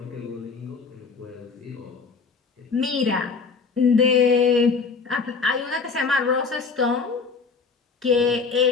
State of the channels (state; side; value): quieter; right; 4.9 dB